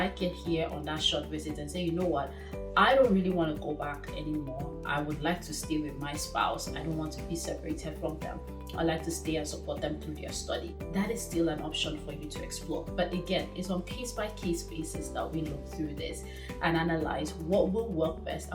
it here on that short visit and say, you know what, I don't really want to go back anymore. I would like to stay with my spouse. I don't want to be separated from them. I like to stay and support them through their study. That is still an option for you to explore. But again, it's on case-by-case basis that we look through this and analyze what will work best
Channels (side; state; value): both; identical; correlation 1.00